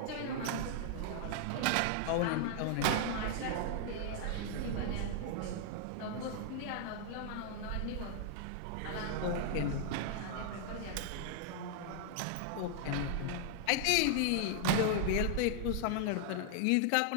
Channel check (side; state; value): both; different; correlation -0.01